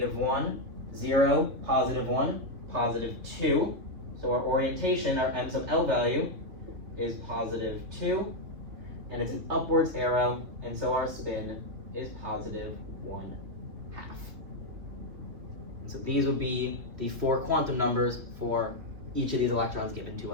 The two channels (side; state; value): left; late; 3.1 ms